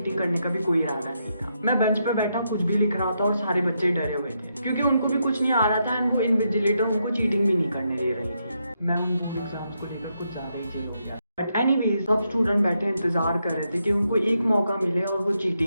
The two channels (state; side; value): inverted; both; correlation -0.81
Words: करने का भी कोई इरादा नहीं था। मैं बेंच पे बैठा कुछ भी लिख रहा था और सारे बच्चे डरे हुए थे क्योंकि उनको भी कुछ नहीं आ रहा था एंड वो इन्विजिलेटर उनको चीटिंग भी नहीं करने दे रही थी। मैं उन बोर्ड एग्जाम्स को लेकर कुछ ज्यादा ही चिल हो गया। बट एनीवेज सब स्टूडेंट बैठे इंतजार कर रहे थे कि उनको एक मौका मिले और वो